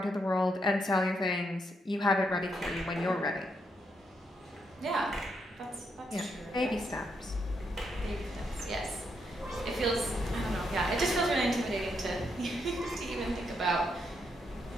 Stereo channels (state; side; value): normal; both; correlation 0.79